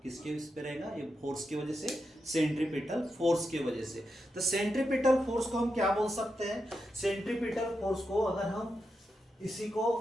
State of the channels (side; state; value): both; normal; correlation 0.87